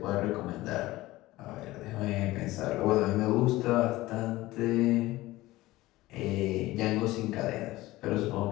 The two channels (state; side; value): quieter; right; 18.1 dB